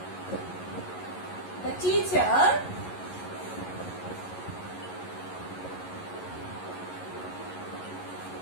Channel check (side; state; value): right; late; 11 ms